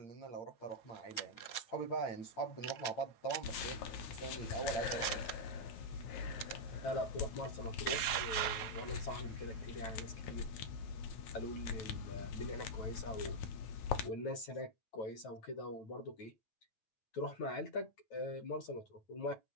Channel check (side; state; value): right; late; 9.0 ms